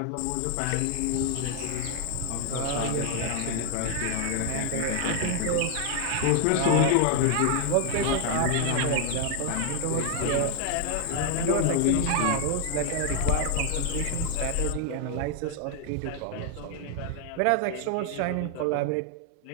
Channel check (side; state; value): both; different; correlation 0.00